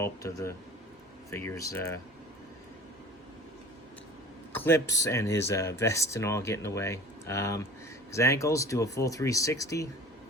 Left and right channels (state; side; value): normal; both; correlation 0.42